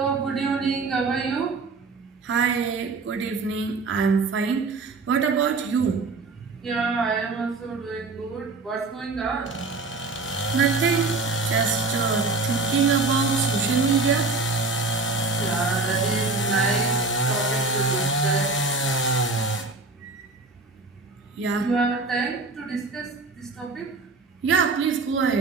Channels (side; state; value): left; quieter; 3.8 dB